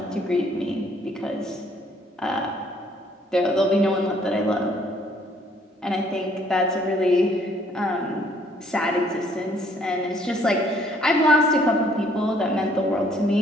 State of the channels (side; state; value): both; normal; correlation 0.63